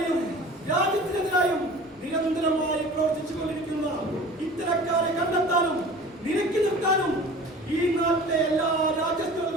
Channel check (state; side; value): normal; both; correlation 0.42